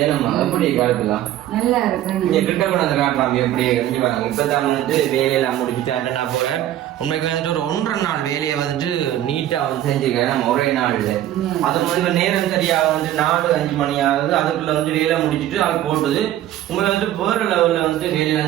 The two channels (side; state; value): left; quieter; 12.7 dB